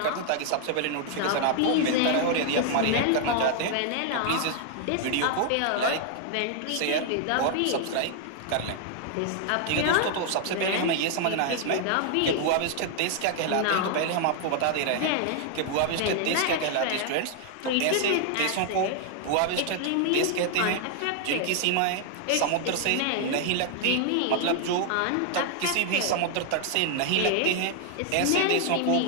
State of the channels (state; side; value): different; both; correlation 0.00